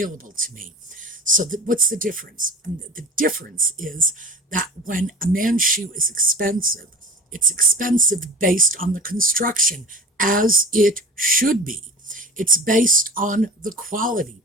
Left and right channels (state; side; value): normal; both; correlation 0.35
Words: to me. So what's the difference? And the difference is that when a man's shoe is expensive, it's expensive based on the construction, as it should be. It's based on the quality.